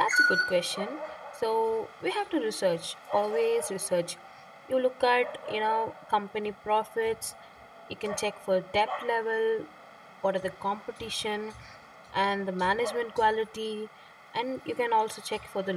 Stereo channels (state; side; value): identical; both; correlation 1.00